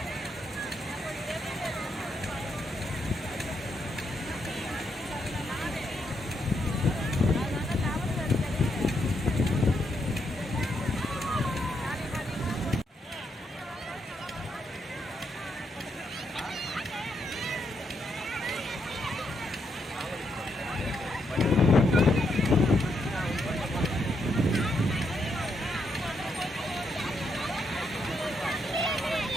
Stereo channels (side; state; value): both; normal; correlation 0.79